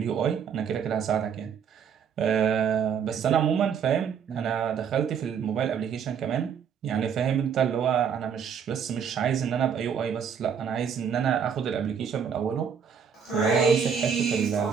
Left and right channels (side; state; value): left; quieter; 7.3 dB